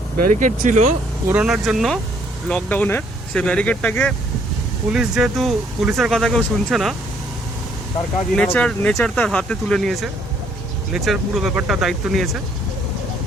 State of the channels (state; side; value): normal; both; correlation 0.66